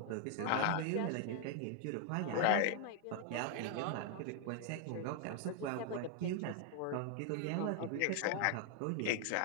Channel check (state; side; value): different; both; correlation 0.00